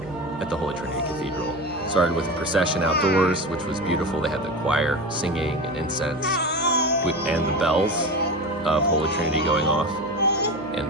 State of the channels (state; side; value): noise; left; hum, 22 dB below the sound